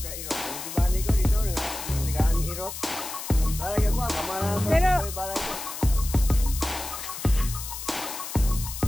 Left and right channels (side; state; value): left; noise; hiss, 8 dB below the sound